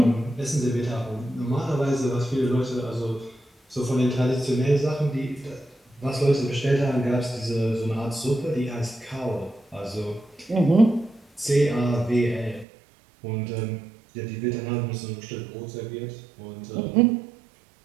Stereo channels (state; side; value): drops out; left; at 12.7 s